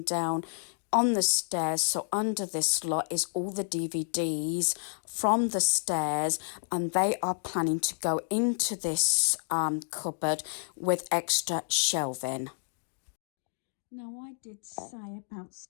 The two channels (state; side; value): silent; right; digital silence